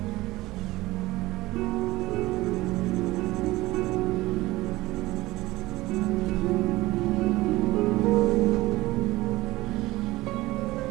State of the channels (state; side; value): quieter; left; 18.8 dB